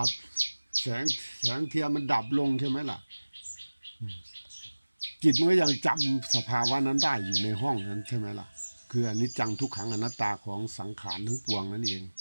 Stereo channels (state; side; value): inverted; both; correlation -1.00